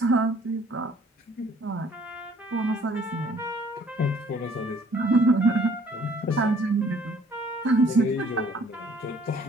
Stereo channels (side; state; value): both; normal; correlation 0.58